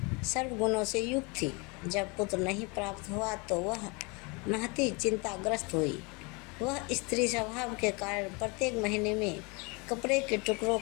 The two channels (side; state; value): right; quieter; 29.4 dB